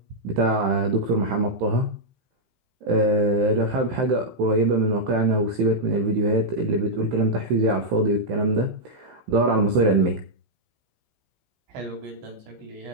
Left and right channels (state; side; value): late; left; 15 ms